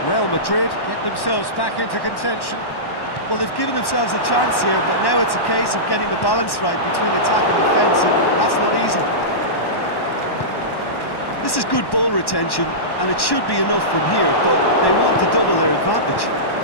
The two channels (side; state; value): right; late; 1.1 ms